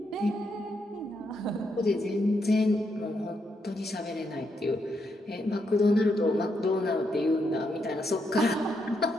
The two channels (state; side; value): normal; both; correlation 0.80